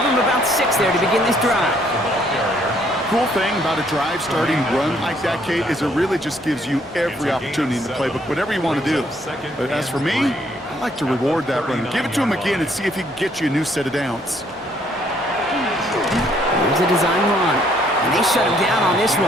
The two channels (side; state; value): both; normal; correlation 0.66